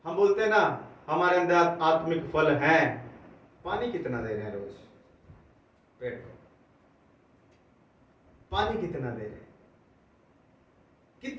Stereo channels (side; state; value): both; identical; correlation 1.00